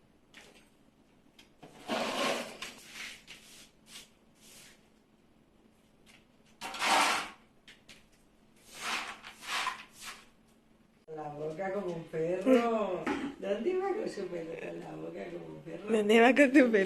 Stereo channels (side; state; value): both; identical; correlation 1.00